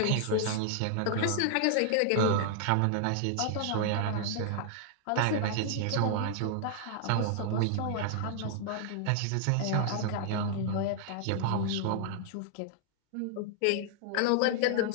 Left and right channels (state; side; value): different; both; correlation 0.00